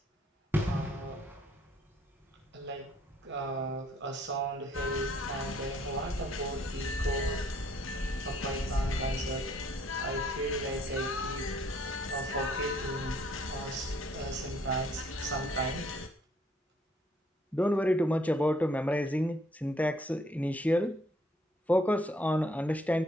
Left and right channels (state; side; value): normal; both; correlation 0.64